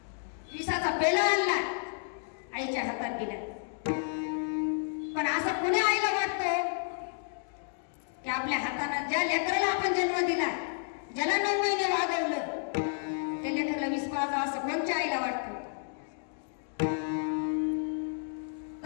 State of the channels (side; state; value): right; silent; digital silence